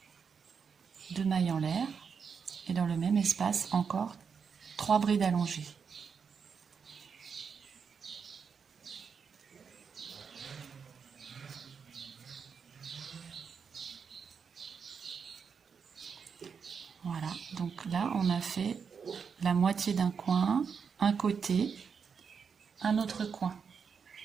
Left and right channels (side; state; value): left; quieter; 6.2 dB